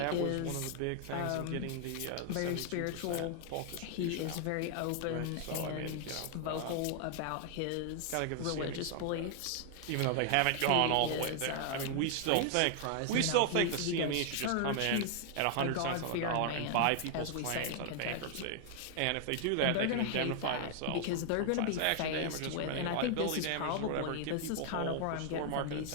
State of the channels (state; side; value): different; both; correlation 0.00